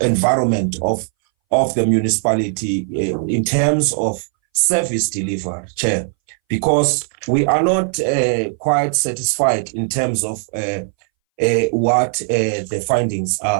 environment of the municipality in terms of service delivery, Chair? Because we are not quite satisfied in terms of what the findings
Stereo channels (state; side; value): silent; left; 63 dB below the other